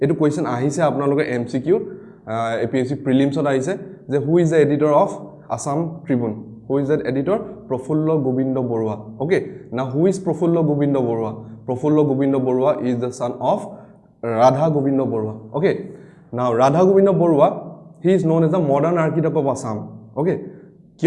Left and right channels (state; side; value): identical; both; correlation 1.00